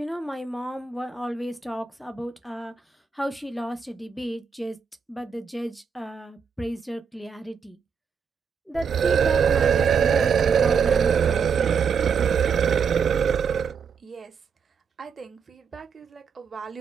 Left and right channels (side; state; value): left; quieter; 6.3 dB